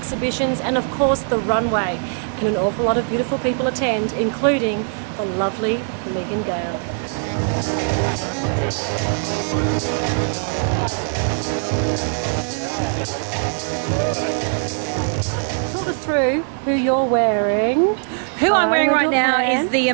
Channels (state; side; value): silent; left; 59 dB below the other